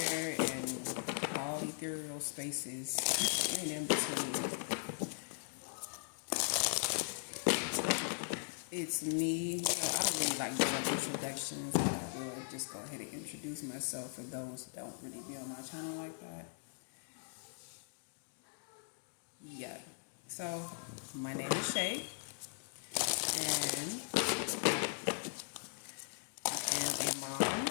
and all ethereal spaces and in between. It's me. I don't really like doing introductions, but I will just go ahead and introduce myself for those that don't really be on my channel like that. Yeah. So, my name is Shay, and I am a mom.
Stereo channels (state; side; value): silent; right; digital silence